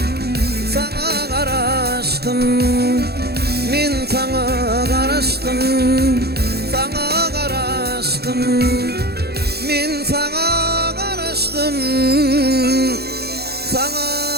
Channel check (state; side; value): late; left; 0.47 ms